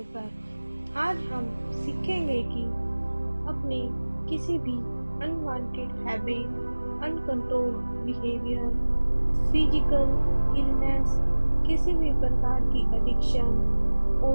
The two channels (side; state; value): both; inverted; correlation -1.00